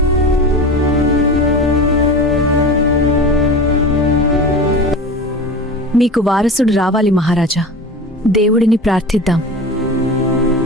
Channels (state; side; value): normal; both; correlation 0.31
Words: మీకు వారసుడు రావాలి మహారాజా. దేవుడిని ప్రార్థిద్దాం.